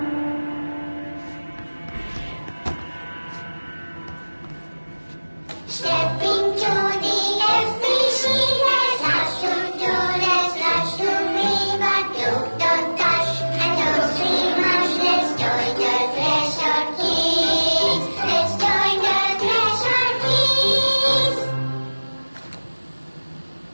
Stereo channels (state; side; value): inverted; both; correlation -1.00